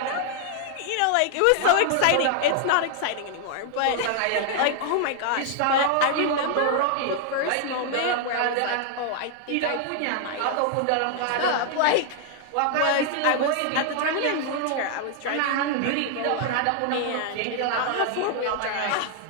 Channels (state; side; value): different; both; correlation 0.00